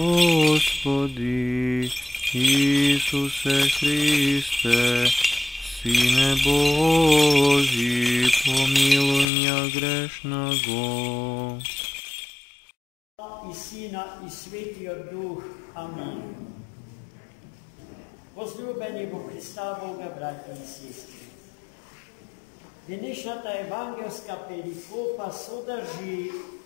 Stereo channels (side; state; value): right; drops out; at 9.2 s